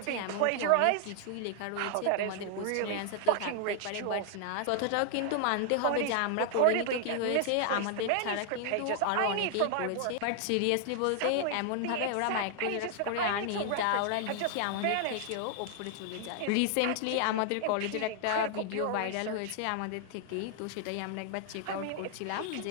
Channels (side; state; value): both; different; correlation 0.00